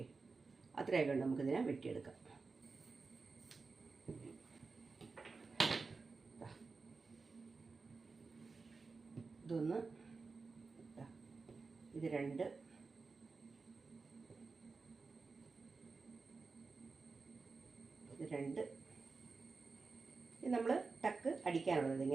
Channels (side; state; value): left; quieter; 4.3 dB